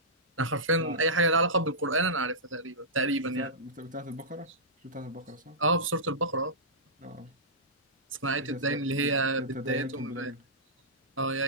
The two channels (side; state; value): both; normal; correlation -0.16